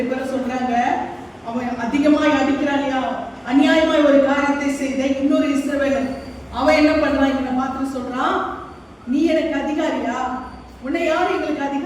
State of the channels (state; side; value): identical; both; correlation 1.00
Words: பேரும் சொல்றாங்க, அவன் அதிகமாய் அடிக்கிறான்யா, அநியாயமாய் ஒரு காரியத்தை செய்த இன்னொரு இஸ்ரவேலன், அவன் என்ன பண்றான்? இவனை பார்த்து சொல்றான், நீ எனக்கு அதிகாரியா? உன்னை யார் எங்களுக்கு